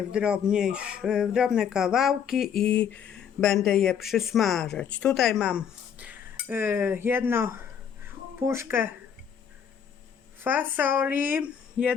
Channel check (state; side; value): quieter; right; 7.9 dB